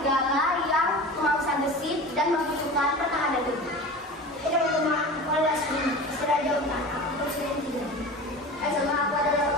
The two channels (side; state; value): both; normal; correlation 0.34